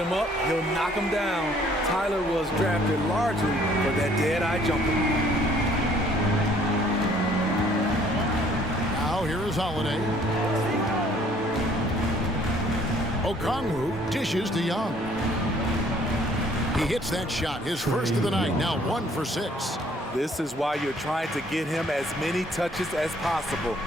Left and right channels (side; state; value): both; normal; correlation 0.60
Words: up, he'll knock him down. Tyler was drafted largely for that dead-eye jumper. Now here is Holiday. Okongwu dishes to Young. He hits that shot, his first of the night, now 1 for 6. This is why you're trying to get him as many touches as possible.